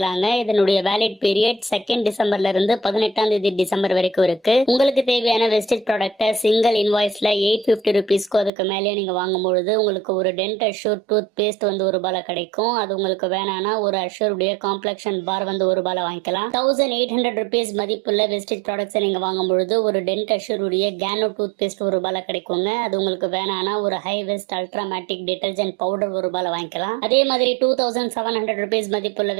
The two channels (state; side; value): drops out; left; at 8.5 s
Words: இதனுடைய வேலிட் பீரியட் 2 டிசம்பர்ல இருந்து 18 டிசம்பர் வரைக்கும் இருக்கு. உங்களுக்கு தேவையான வெஸ்டேஜ் ப்ராடக்ட்டை சிங்கிள் இன்வாய்ஸ்ல 850 ருபீஸ்க்கு அதுக்கு மேலே நீங்க வாங்கும்பொழுது உங்களுக்கு ஒரு டென்ட் அஷ்யூர் டூத் பேஸ்ட் வந்து ₹1 கிடைக்கும். அது உங்களுக்கு வேணானா ஒரு அஷ்யூருடைய காம்ப்ளெக்ஷன் பார் வந்து ₹1 வாங்கிக்கலாம். 1800 ருபீஸ் மதிப்புள்ள வெஸ்டேஜ் ப்ராடக்ட்ஸ் நீங்க வாங்கும்பொழுது ஒரு டென்ட் அஷ்யூருடைய கேனோ டூத் பேஸ்ட் ₹1 கிடைக்குங்க. அது உங்களுக்கு வேணானா ஒரு ஹை வெஸ்ட் அல்ட்ராமேட்டிக் டிடர்ஜென்ட் பவுடர் ₹1 வாங்கிக்கலாம். அதே மாதிரி 2700 ருபீஸ் மதிப்புள்ள